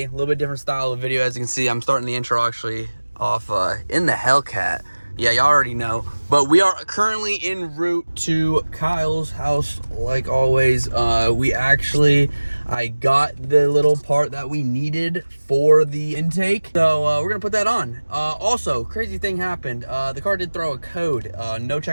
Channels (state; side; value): inverted; both; correlation -1.00